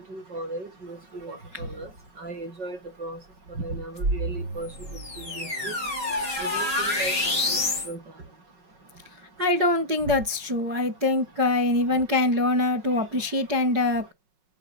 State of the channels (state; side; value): late; left; 5.4 ms